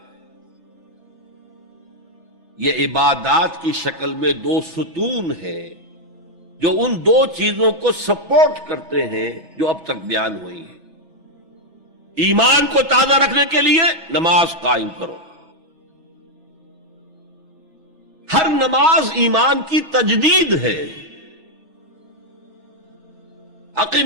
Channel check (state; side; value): late; right; 3.3 ms